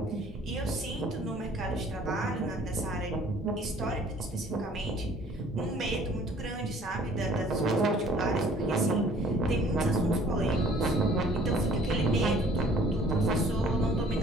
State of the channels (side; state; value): both; normal; correlation 0.54